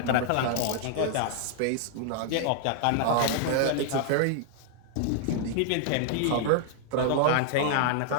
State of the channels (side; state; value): both; different; correlation -0.01